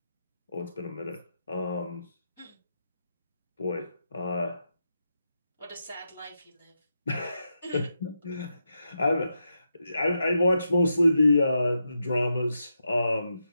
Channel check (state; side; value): inverted; both; correlation -0.85